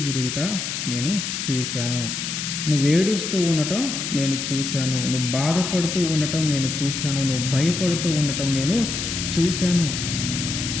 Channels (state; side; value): noise; left; hiss, 4 dB below the sound